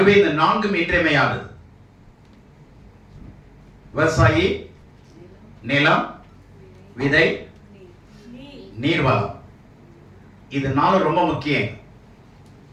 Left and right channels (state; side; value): identical; both; correlation 1.00